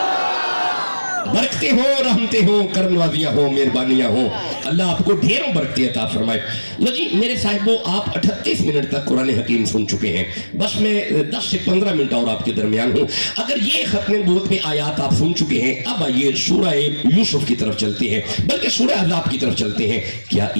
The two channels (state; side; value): inverted; both; correlation -1.00